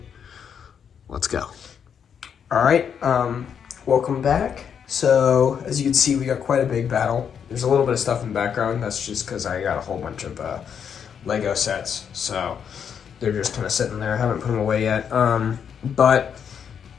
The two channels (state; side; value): quieter; right; 7.6 dB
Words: Let's go. Alright, welcome back. So, as you can see, we got quite a big battle. There's a little bit of stuff in the background. That's just because I got a whole bunch of Lego sets. So, they're just kind of sitting there. I haven't put them away yet. And